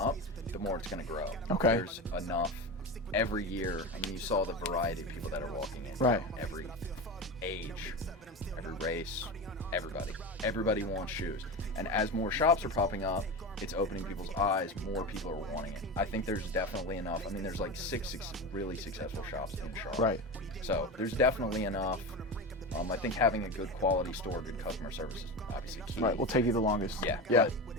the more it's going to grow. Okay. There's enough every year. I mean, you saw the variety of people that are walking in. Right. Every age, every race, everybody. Everybody wants shoes. And as more shops are popping up, it's opening people's eyes. More people are wanting it. I think there's definitely enough. I mean, there's like six really successful shops in Charlotte. Right. So there's definitely enough. I think having a good quality store, good customer service is obviously key. Right, will take you the longest. Yeah. Yeah.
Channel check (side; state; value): both; normal; correlation 0.24